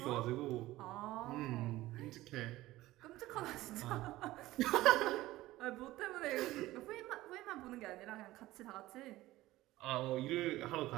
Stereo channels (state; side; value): quieter; left; 17.0 dB